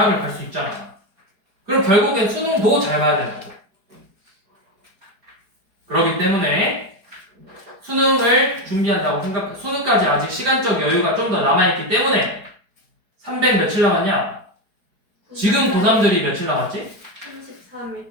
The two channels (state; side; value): late; left; 4.8 ms